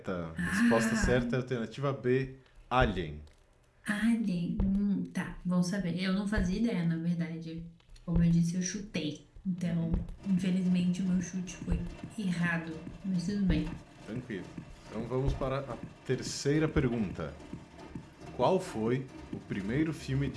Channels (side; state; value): both; identical; correlation 1.00